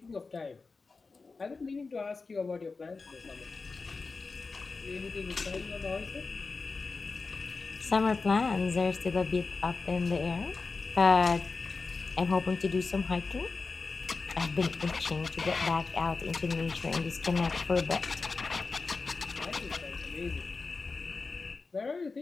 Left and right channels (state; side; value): quieter; right; 4.2 dB